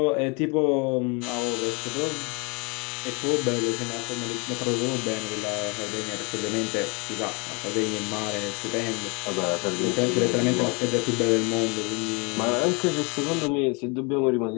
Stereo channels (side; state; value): right; quieter; 31.3 dB